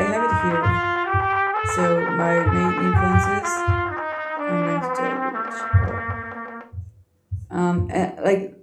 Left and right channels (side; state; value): both; identical; correlation 1.00